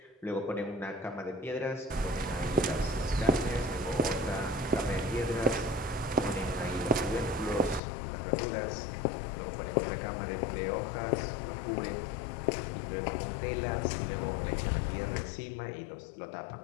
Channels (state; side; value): drops out; right; at 7.8 s